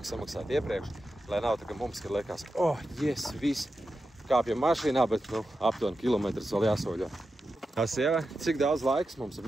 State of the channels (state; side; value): normal; both; correlation 0.90